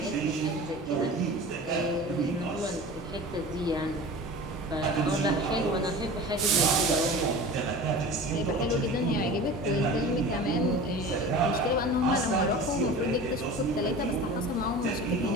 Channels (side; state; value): both; normal; correlation 0.36